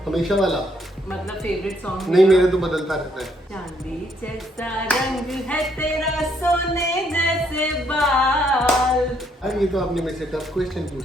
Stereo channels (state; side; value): normal; both; correlation 0.71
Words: हमेशा वाला। मतलब फेवरेट सॉन्ग नहीं, मेरे तो बदलता रहता है। चांदी जैसा रंग है तेरा, सोने जैसे बाल। अरे ये तो आपने मेरे से टफ क्वेश्चन पूछ